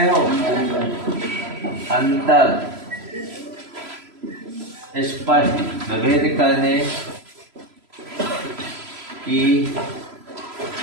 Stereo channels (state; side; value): late; left; 3.0 ms